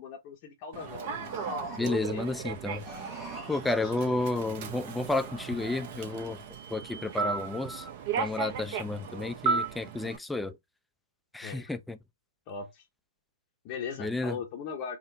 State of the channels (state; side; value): normal; both; correlation 0.54